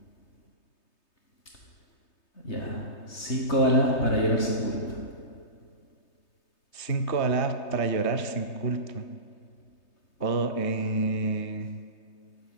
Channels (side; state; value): right; late; 3.2 ms